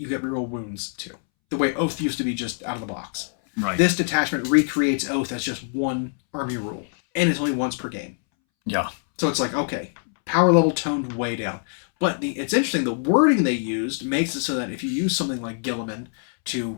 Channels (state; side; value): silent; right; 63 dB below the other